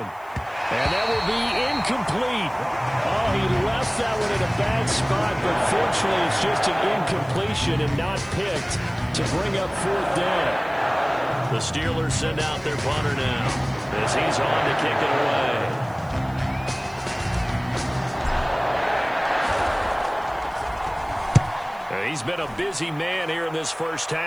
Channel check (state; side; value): noise; right; hiss, 28 dB below the sound